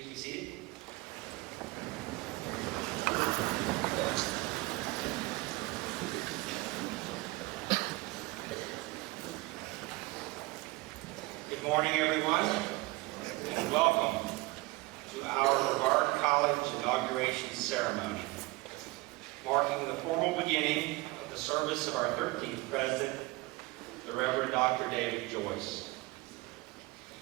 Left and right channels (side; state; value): left; quieter; 22.7 dB